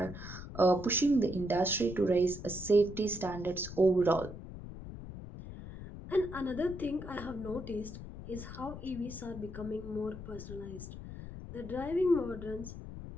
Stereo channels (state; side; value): noise; left; rumble, 11 dB below the sound